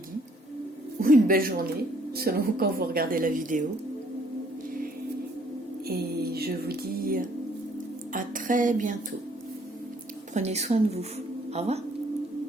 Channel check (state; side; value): normal; both; correlation 0.63